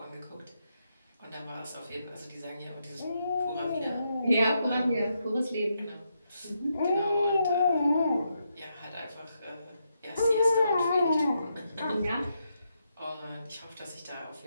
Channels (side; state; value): both; inverted; correlation -0.81